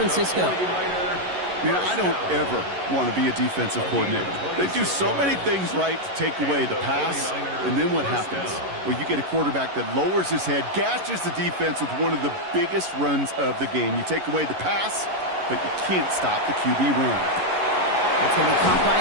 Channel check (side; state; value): left; late; 11 ms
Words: Man, I don't ever want to be a defensive coordinator. They do so many things right to take away the pass, and then what happens? Well, you get a quarterback that lowers his head, gashes the defense with one of the biggest runs of the game. You take away the pass, but you can't stop the QB run. That's going to be caught by